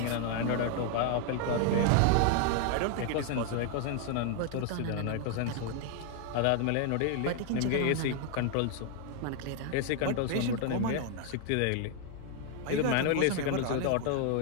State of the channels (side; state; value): both; different; correlation 0.00